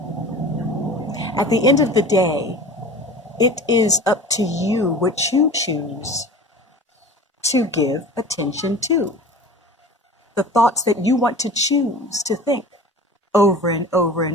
At the end of the day, it is up to you what you choose to give attention to. The thoughts that you want to choose to think over and over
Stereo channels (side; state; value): both; normal; correlation 0.38